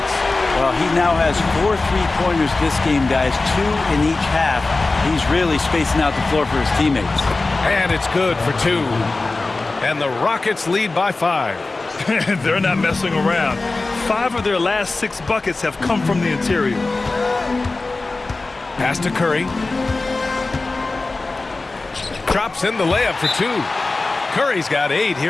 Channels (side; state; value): right; quieter; 3.4 dB